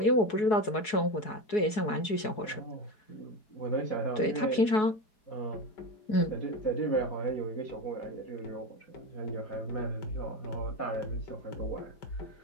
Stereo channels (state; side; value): late; right; 4.7 ms